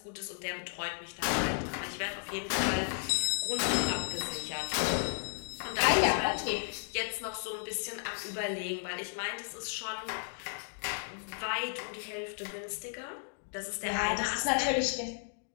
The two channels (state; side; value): silent; right; digital silence